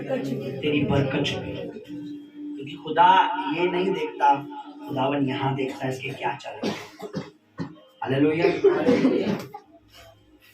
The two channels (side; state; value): both; identical; correlation 1.00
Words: बरकत छुपी है। क्योंकि खुदा ये नहीं देखता, खुदावन यहाँ देखता है इसके क्या चल रहा है। हालेलुया।